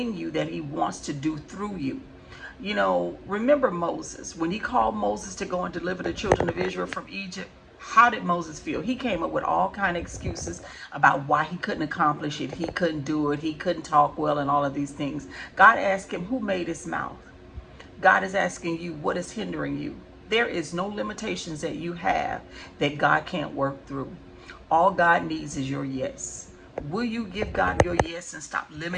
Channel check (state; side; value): identical; both; correlation 1.00